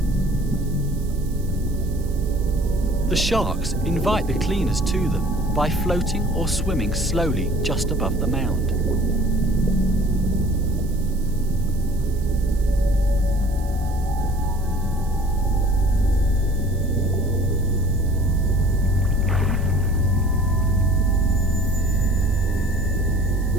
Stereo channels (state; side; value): noise; right; hiss, 22 dB below the sound